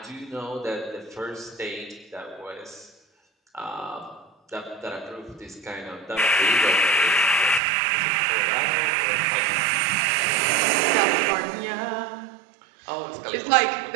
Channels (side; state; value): left; drops out; at 7.6 s